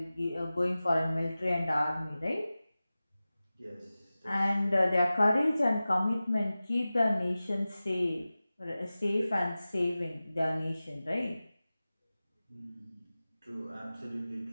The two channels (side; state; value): both; inverted; correlation -0.96